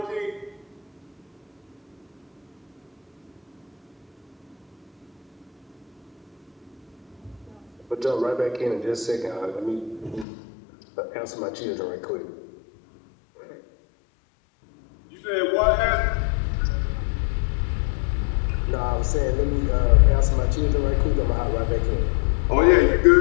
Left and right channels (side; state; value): right; drops out; at 10.2 s